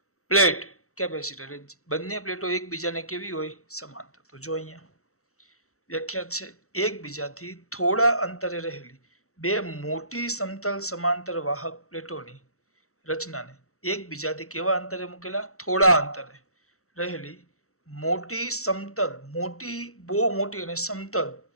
પ્લેટ કેપેસિટર। બંને પ્લેટો એકબીજાને કેવી હોય? સમાંતર। તો જો અહીંયા વ્યાખ્યા છે, એકબીજાથી થોડા અંતરે રહેલી બે મોટી સમતલ સમાંતર વાહક પ્લેટોની રચનાને એકબીજાથી કેવા અંતરે મૂકેલા? થોડા અંતરે રહેલી મોટી સમતલ, બહુ મોટી અને સમતલ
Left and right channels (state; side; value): late; right; 0.64 ms